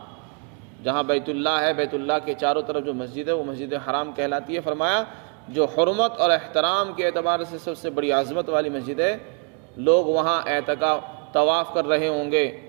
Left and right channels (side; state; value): left; quieter; 35.9 dB